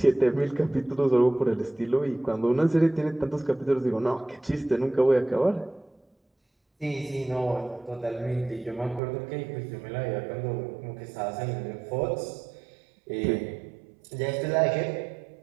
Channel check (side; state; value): left; drops out; at 9.0 s